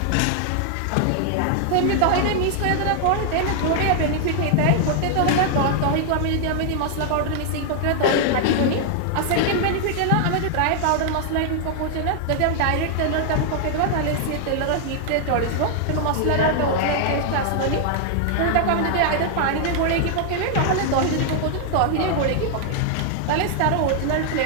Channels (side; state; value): both; different; correlation 0.00